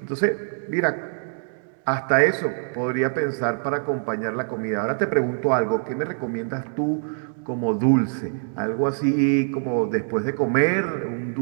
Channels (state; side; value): silent; left; digital silence